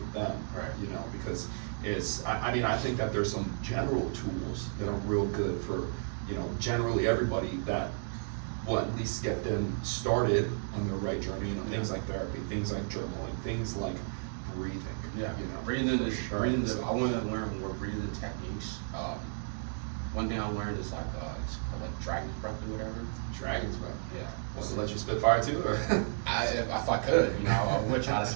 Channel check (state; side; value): silent; left; digital silence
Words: them. Right. You know, because I mean, I think that there's some general tools that are real good for, you know, generally everybody that will at least get them started on their right journey. You know, things like therapy, things like journaling, things like breathing. Yeah, You know, breathing is for sure. breathing. I wanted to learn more breathing techniques. One thing I learned is like it's called like dragon's breath or whatever. Dragon's breath. Yeah. Want to let you spit fire too, or? If I could, you know, I would try to